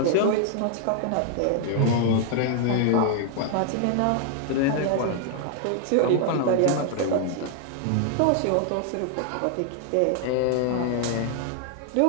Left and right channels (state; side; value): different; both; correlation 0.00